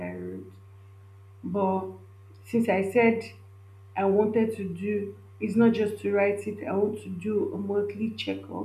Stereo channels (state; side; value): identical; both; correlation 1.00